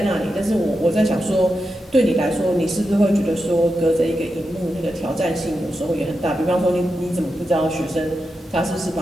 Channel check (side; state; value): both; normal; correlation 0.88